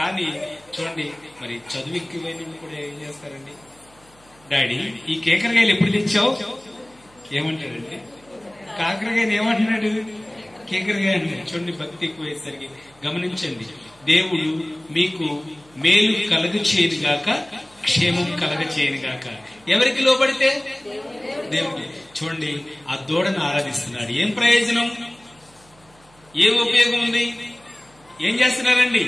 చూడండి, మరి చదువు ఎక్కువైన కూడా ఏం చేస్తారండి? డాడీ ఈ కేకరకాయలు ఎప్పుడు తెచ్చావు? ఏమంటాడండి? కాకరకాయలు ఏమంటున్నాడు? కేకరకాయ అంటాడు. చూడండి, భక్తి ఎక్కువయ్యేసరికి. గమనించండి, దేవుడు మీకు మేలు కలగ చేయను గాక, క్షేమం కలగ చేయను గాక. ఎవరికి లోబడితే? దేవుడికి. చూడండి, ఆ దూడను ఆరాధిస్తున్నాడు. ఏం ప్రయోజనం, ఏం ఉపయోగం ఉంది? ఏం చేస్తున్నారండి?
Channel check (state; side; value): noise; right; hum, 29 dB below the sound